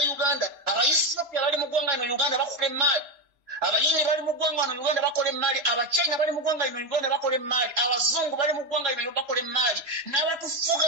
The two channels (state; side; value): late; left; 3.0 ms